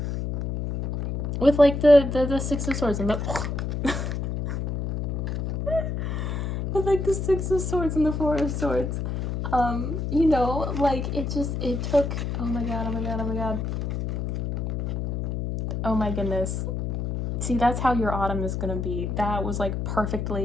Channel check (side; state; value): left; noise; hum, 2 dB below the sound